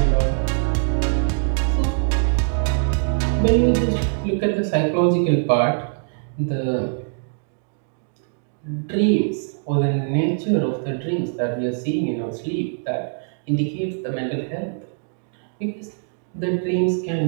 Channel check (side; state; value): left; silent; digital silence